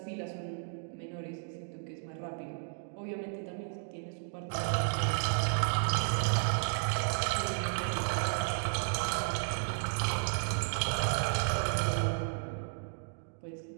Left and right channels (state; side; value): silent; left; digital silence